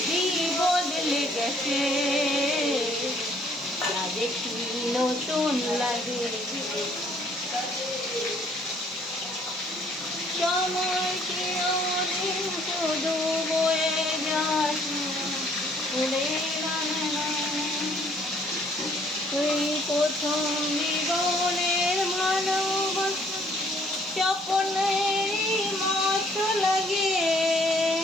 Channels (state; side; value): normal; both; correlation 0.62